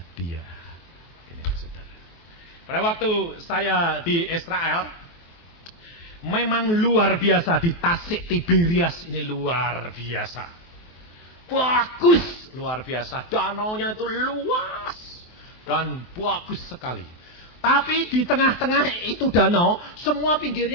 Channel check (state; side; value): late; right; 23 ms